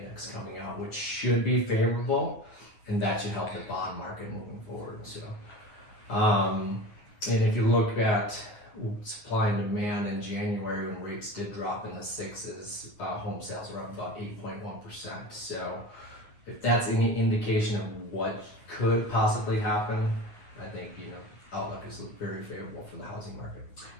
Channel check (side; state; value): right; late; 9.6 ms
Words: coming out, which should be favorable. And that should help the bond market moving forward. So, and if you look at supply and demand in January, when rates did drop in the sixes, home sales are up about 8.1%. So, if that's any indication of what could possibly happen, I think outlook is very favorable for the housing market.